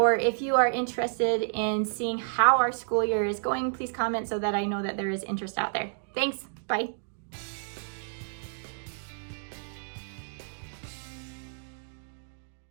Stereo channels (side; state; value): left; silent; digital silence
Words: if you are interested in seeing how our school year is going, please comment so that I know that there is interest out there. Thanks, bye.